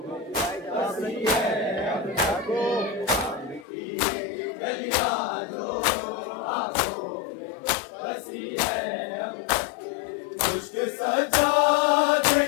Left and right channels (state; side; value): drops out; right; at 3.7 s